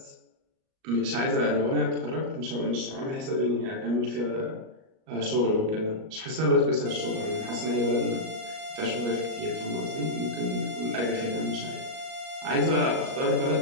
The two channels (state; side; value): late; left; 38 ms